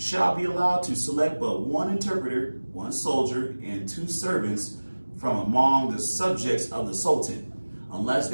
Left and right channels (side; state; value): both; inverted; correlation -1.00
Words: be allowed to select but one interpreter, one soldier, and 2 servants from among the subjects of the Sultan, unless